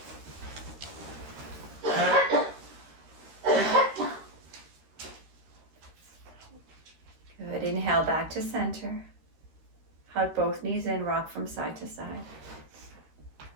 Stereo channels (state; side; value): late; left; 13 ms